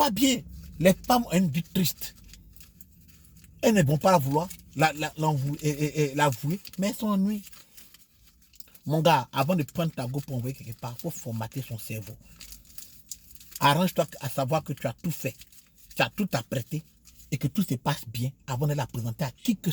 bien. Les femmes ont une vie triste. Elles ne vont pas la vouloir, l'avouer, mais elles s'ennuient. Mon gars, avant de prendre ta go pour envoyer quelque part, il faut formater son cerveau. Arrange-toi à savoir que tu as tout fait. Tu as tout apprêté et que tout se passe bien avant de la présenter à qui que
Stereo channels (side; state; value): both; identical; correlation 1.00